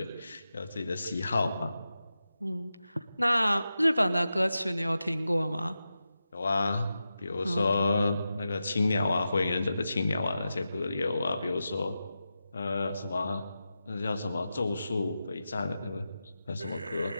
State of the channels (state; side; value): inverted; both; correlation -0.91